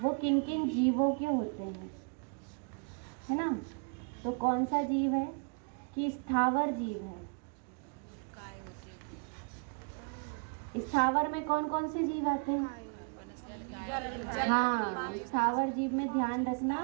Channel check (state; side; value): quieter; left; 38.1 dB